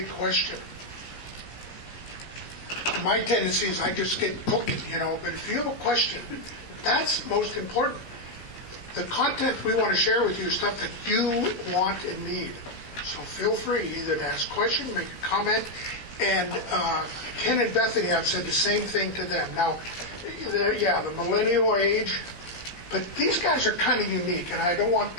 question, my tendency is I just get cooking, but if you have a question, that's most important. The content we want to share with you is stuff that you want and need. So feel free either to ask a question, make a comment, and Ken and Bethany, I've said the same thing to them. Now, the millennial age, but these guys are kind of unique, and I don't want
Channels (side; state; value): right; late; 17 ms